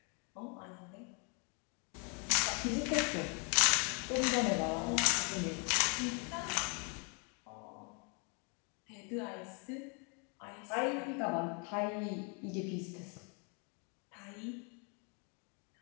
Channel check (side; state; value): right; quieter; 36.4 dB